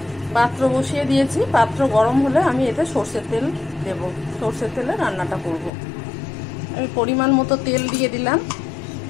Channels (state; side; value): drops out; right; at 5.7 s